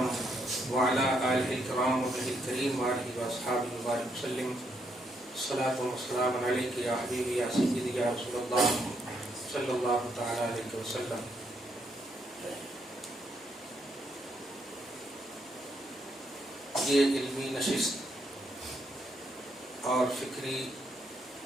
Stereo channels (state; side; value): normal; both; correlation 0.75